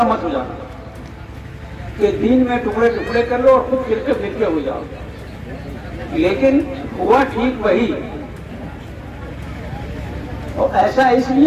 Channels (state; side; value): identical; both; correlation 1.00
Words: مت ہو جانا، کہ دین میں ٹکڑے ٹکڑے کر لو اور خود فرقے فرقے ہو جاؤ۔ لیکن ہوا ٹھیک وہی، اور ایسا اس